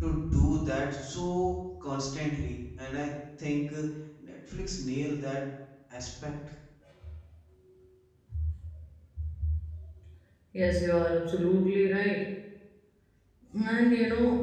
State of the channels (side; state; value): both; identical; correlation 1.00